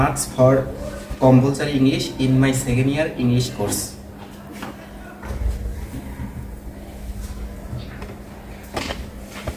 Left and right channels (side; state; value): both; identical; correlation 1.00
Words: for compulsory English in my second year English course.